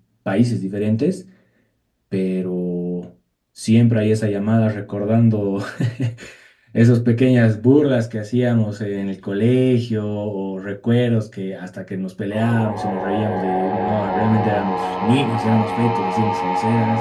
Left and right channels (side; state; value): both; identical; correlation 1.00